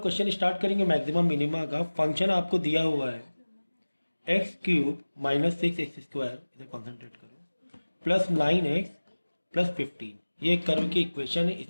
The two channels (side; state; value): both; inverted; correlation -1.00